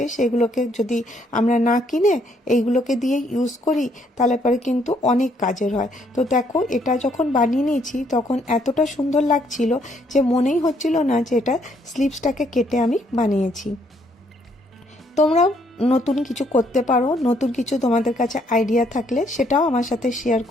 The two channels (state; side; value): normal; both; correlation 0.69